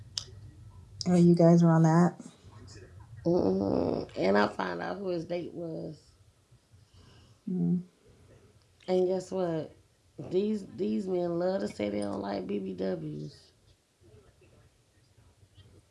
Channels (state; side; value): identical; both; correlation 1.00